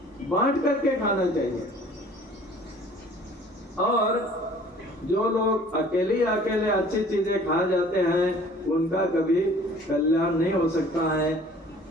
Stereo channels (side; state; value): both; normal; correlation 0.51